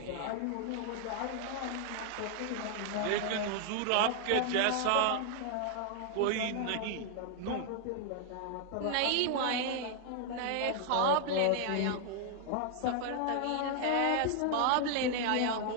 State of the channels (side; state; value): both; different; correlation 0.00